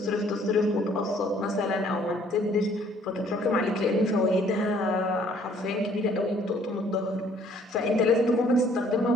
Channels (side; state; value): both; normal; correlation 0.60